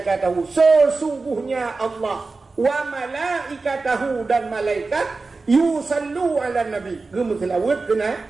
sesungguhnya Allah wa malaikatahu dan malaikat yusallu ala nabi gemuselawat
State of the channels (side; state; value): left; quieter; 3.9 dB